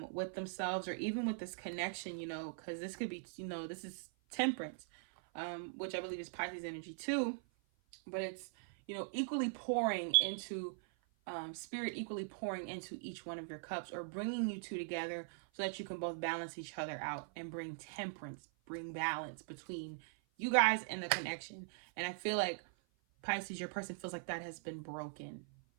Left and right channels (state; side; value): silent; left; 50 dB below the other